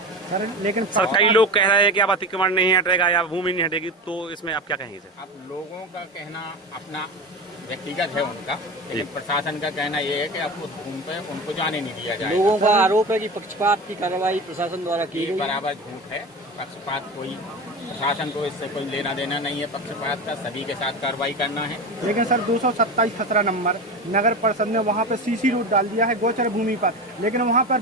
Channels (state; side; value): normal; both; correlation 0.26